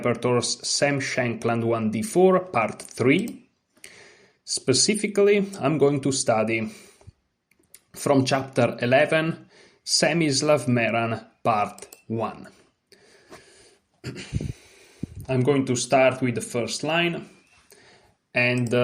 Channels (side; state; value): both; identical; correlation 1.00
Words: Sam Shankland 1d4 Part 3. Specifically, I'm going to study from Chapter 11, Semislav Meran Part 1. I'm going to start with the first line and